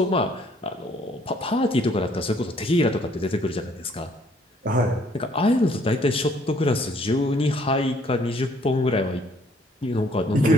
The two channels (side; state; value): both; normal; correlation 0.63